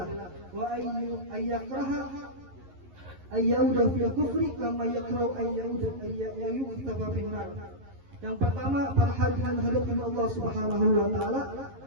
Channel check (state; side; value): late; left; 11 ms